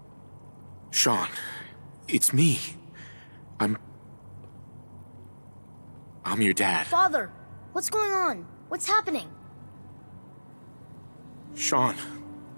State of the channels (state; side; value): inverted; both; correlation -1.00